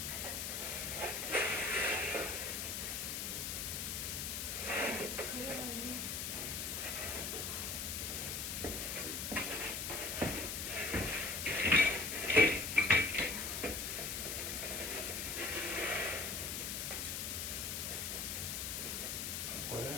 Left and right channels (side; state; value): left; noise; hiss, 2 dB below the sound